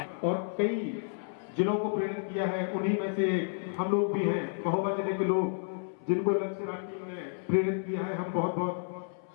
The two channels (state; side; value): silent; right; 57 dB below the other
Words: और कई जिलों को प्रेरित किया है, उन्हीं में से हम लोग भी हैं, महोबा जिले के लोग जिनको लक्ष्य राज टीम ने प्रेरित किया है। हम बहुत बहुत